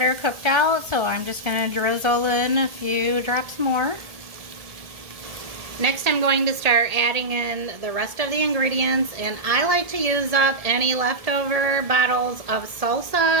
cooked out, so I'm just going to drizzle in a few drops more. Next, I'm going to start adding in the rest of the ingredients, and I like to use up any leftover bottles of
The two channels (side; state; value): left; late; 1.7 ms